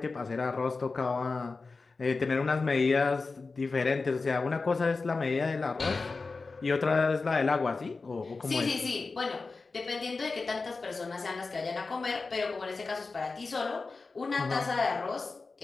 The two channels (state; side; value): quieter; right; 4.0 dB